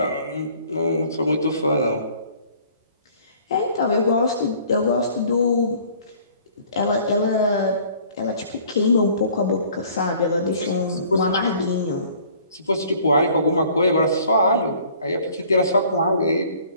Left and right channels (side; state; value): both; inverted; correlation -0.54